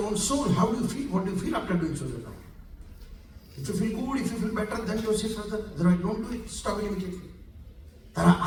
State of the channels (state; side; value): identical; both; correlation 1.00